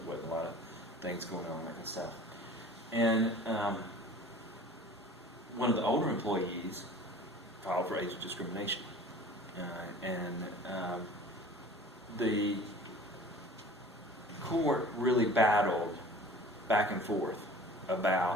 there wasn't a lot of things going on, that kind of stuff. And one of the older employees filed for age discrimination. The court really battled back and forth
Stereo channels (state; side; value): normal; both; correlation 0.44